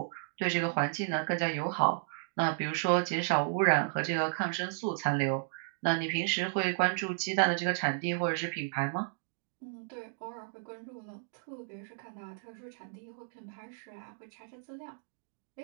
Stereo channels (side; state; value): left; silent; digital silence